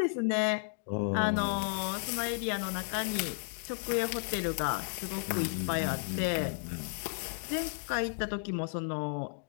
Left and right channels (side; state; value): right; silent; digital silence